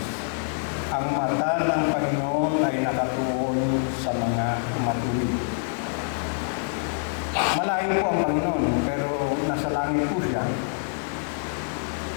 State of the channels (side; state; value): right; silent; digital silence